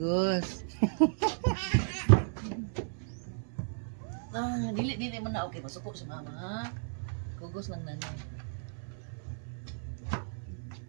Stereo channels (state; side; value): silent; left; 55 dB below the other